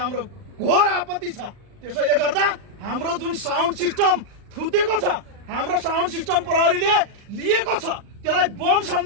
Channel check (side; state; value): left; late; 39 ms